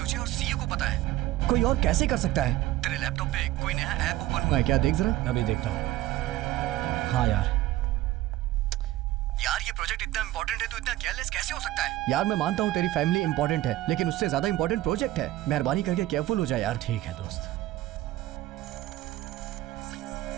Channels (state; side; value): quieter; left; 15.4 dB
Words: और सीईओ को पता है, कोई और कैसे कर सकता है? तेरे लैपटॉप पे कोई नया ऐप ओपन हुआ है क्या? देख जरा। अभी देखता हूँ। हाँ यार, ये प्रोजेक्ट इतना इंपॉर्टेंट है तो इतना केयरलेस कैसे हो सकता है? यार मैं मानता हूँ तेरी फैमिली इंपॉर्टेंट है, लेकिन उससे ज्यादा इंपॉर्टेंट प्रोजेक्ट है। मेहरबानी करके केयरफुल हो जाए यार। ठीक है दोस्त।